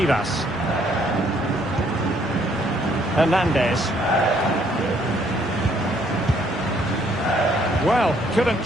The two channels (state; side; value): normal; both; correlation 0.66